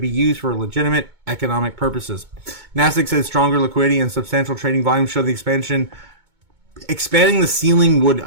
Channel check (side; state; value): left; late; 2.2 ms